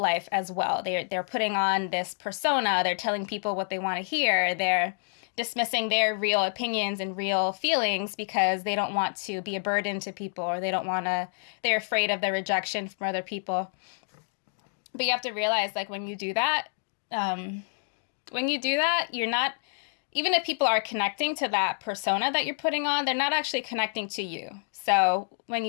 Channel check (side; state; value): right; silent; digital silence